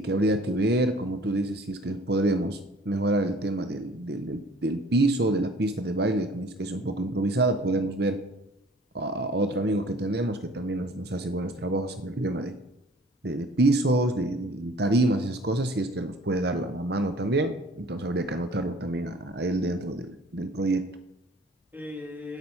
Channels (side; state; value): both; normal; correlation 0.51